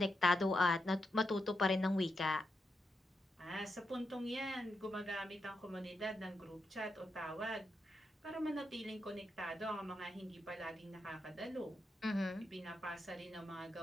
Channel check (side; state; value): both; normal; correlation 0.84